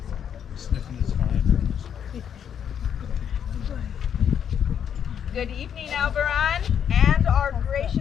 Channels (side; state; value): right; quieter; 8.5 dB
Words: Good evening, al-Barran, and our